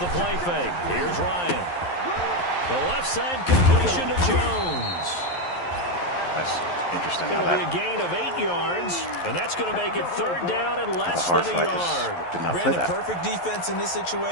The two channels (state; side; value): late; right; 11 ms